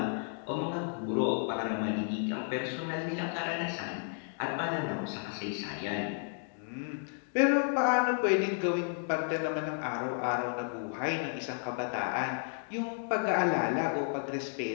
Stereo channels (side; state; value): right; silent; 56 dB below the other